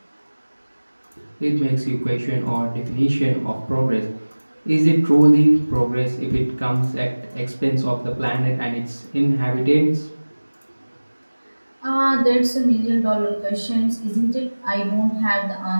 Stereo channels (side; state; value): both; inverted; correlation -1.00